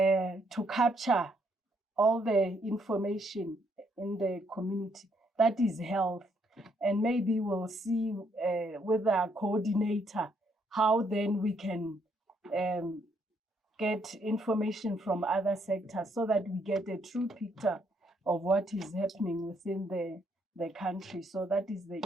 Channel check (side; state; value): both; normal; correlation 0.72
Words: capture all the information in the community that is health. And maybe we'll see with our coordinator how then we can get information from other sectors so that we get a true picture of what is happening within the country. So that is the